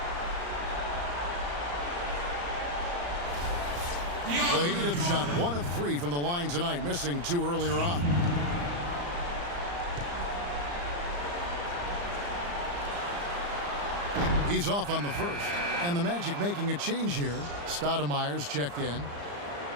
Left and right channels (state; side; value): late; left; 35 ms